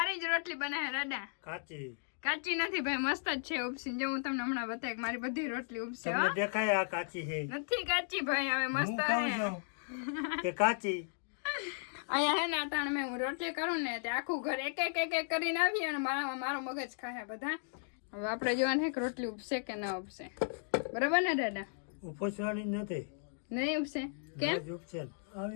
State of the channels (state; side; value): silent; right; digital silence